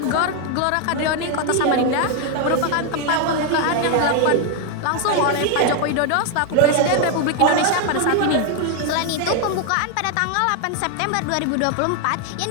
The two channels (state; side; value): different; both; correlation 0.01